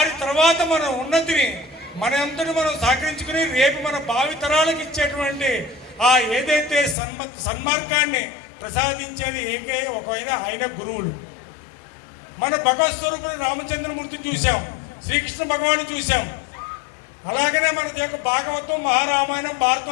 తర్వాత మన ఉన్నతిని మన అంతటి మనం సహకరించుకుని రేపు మన భావితరాలకు ఇచ్చేటువంటి ఆ ఏదైతే సన్మార్గాన్ని ప్రసాదించేది ఒకవైనా ఆయన గురువులు। మన భగవత్ స్వరూపుడు రామచంద్రమూర్తిని చూసాం, శ్రీకృష్ణ భగవాన్ని చూసాం, అలాగనే మన యొక్క భాగవతం, మహారామాయణం,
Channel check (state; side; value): drops out; right; at 7.0 s